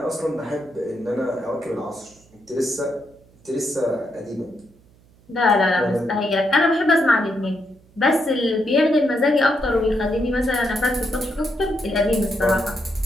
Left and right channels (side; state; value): right; noise; hum, 29 dB below the sound